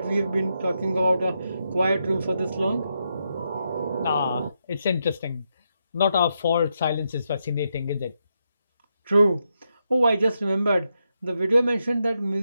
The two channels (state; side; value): inverted; both; correlation -0.83